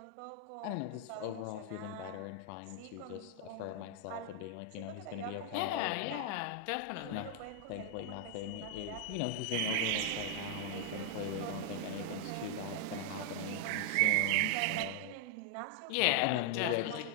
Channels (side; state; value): both; different; correlation 0.00